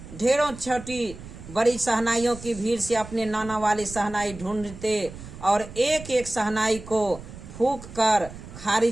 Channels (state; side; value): noise; right; rumble, 15 dB below the sound